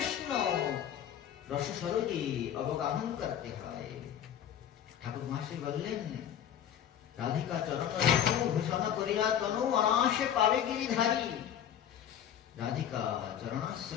রসসরোজে অবগাহন করতে হয়, ঠাকুর মহাশয় বললেন, রাধিকা চরণ ভূষণ করিয়া তনু অনাশে পাবে গিরিধারী। রাধিকা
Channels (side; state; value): right; quieter; 9.8 dB